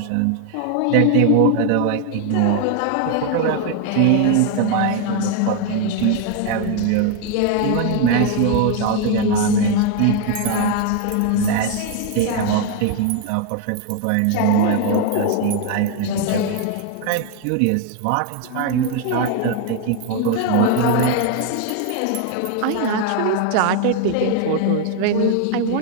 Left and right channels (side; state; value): both; different; correlation 0.01